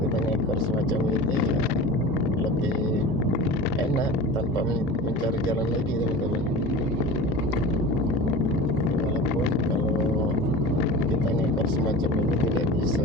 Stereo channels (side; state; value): both; normal; correlation 0.34